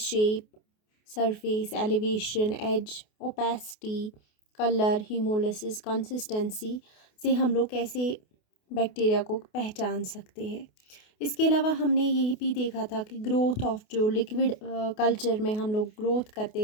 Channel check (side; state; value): right; late; 28 ms